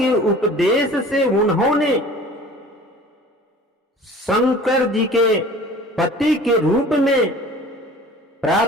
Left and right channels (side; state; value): both; normal; correlation 0.44